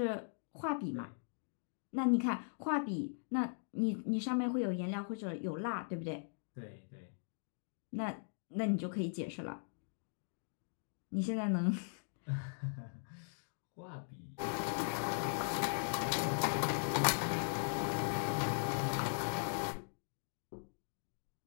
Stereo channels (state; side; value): silent; right; digital silence